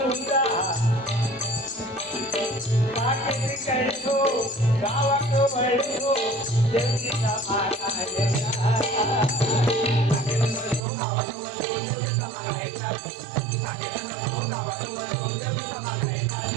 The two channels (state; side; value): drops out; left; at 10.9 s